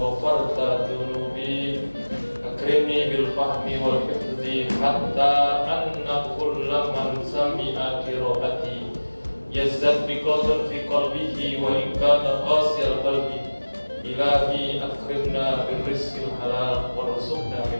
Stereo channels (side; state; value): both; inverted; correlation -1.00